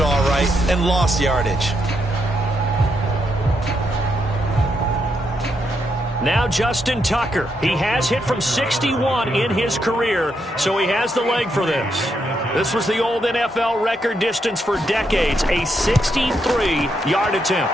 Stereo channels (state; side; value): normal; both; correlation 0.80